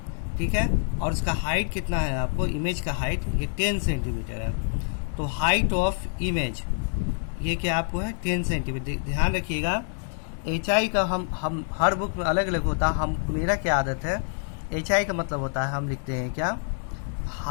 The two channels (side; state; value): right; silent; 60 dB below the other